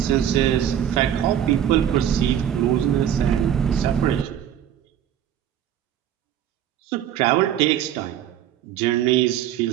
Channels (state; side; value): quieter; left; 10.2 dB